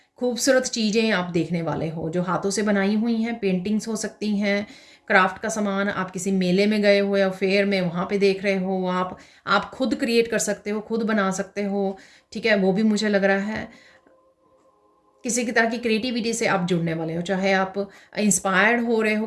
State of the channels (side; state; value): both; identical; correlation 1.00